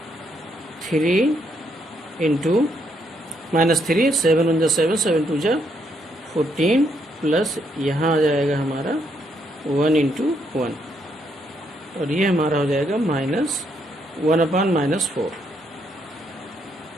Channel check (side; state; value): both; normal; correlation 0.74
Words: 3 इंटू -3 7 1 जा 7 7 2 जा 14 प्लस यहाँ आ जाएगा हमारा 1 इंटू 1, और ये हमारा हो जाएगा -1 अपान -4।